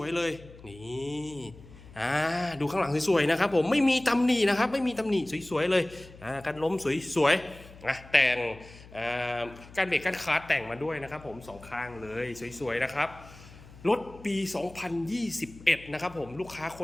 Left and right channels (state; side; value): noise; left; hum, 20 dB below the sound